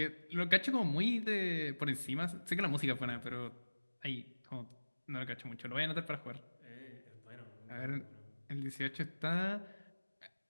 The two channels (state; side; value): inverted; both; correlation -1.00